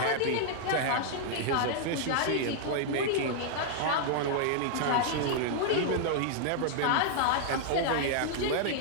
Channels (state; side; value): different; both; correlation -0.01